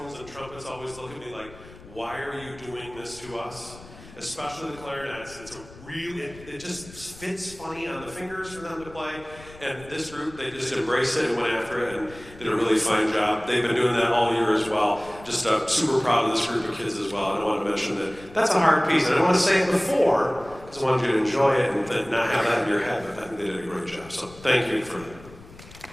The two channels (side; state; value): left; noise; rumble, 19 dB below the sound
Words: and trumpets always look at me like, why are you doing this to us? Especially the clarinets. It's a really, it just fits funny on the fingers for them to play. And this group, they just embraced it and went after it and did a really fine job. They've been doing that all year as well. Just super proud of this group of kids as well. And I want to mention that that's a hard piece. And I don't want to say it before, because I wanted you to enjoy it and then not have that in your head. But I think they did a great job. So thank you for that.